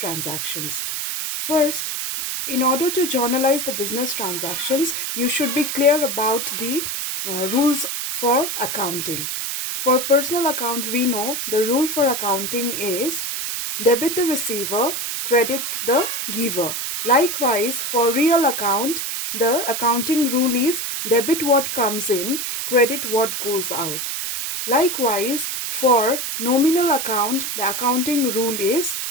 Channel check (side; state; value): right; noise; hiss, 3 dB below the sound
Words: First, in order to journalize the business transactions, you should be clear about the rules for accounting. For personal account, we know the rule for accounting is debit the receiver, credit the giver. Likewise, for real account, the accounting rule is debit what comes in, credit what goes out. Likewise, for nominal account, the accounting rule is